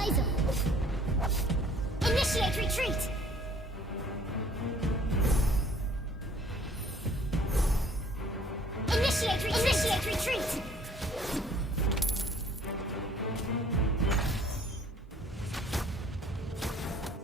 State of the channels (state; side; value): normal; both; correlation 0.56